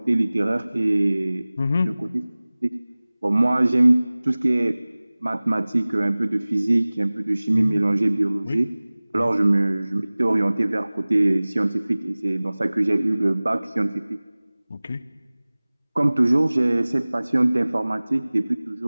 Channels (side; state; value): both; inverted; correlation -0.99